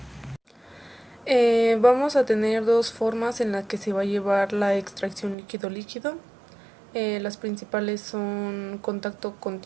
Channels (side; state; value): left; drops out; at 5.4 s